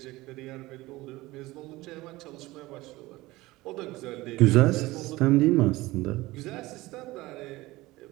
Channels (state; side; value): quieter; left; 19.4 dB